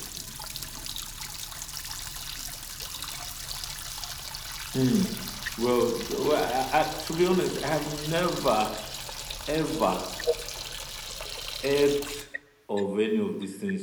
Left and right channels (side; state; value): both; identical; correlation 1.00